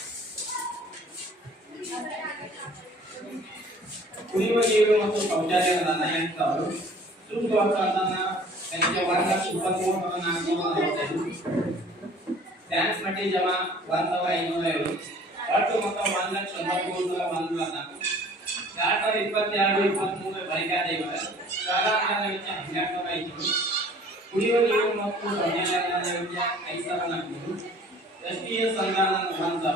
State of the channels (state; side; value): normal; both; correlation 0.51